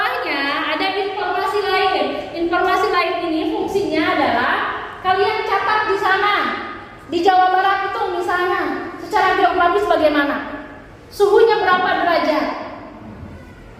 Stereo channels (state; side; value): identical; both; correlation 1.00